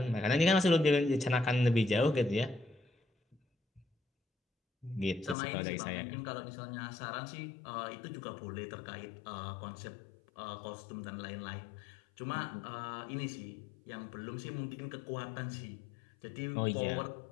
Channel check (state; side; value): drops out; right; at 5.4 s